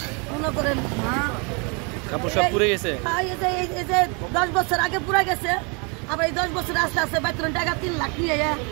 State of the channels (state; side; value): quieter; left; 33.2 dB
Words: মনে করেন কাপড় সব পুড়ে গেছে। এই যে 10 বছর আগে পুরা গেছে, আবার এই 10 বছর আস্তে আস্তে বেতন টাকা 3 লাখ নিয়ে